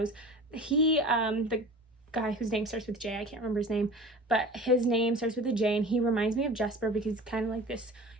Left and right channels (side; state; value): both; normal; correlation 0.39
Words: He, the guy whose name starts with J, I can't remember his name, but his name starts with a J, and he reminds me of Jesper because he's kind of like this,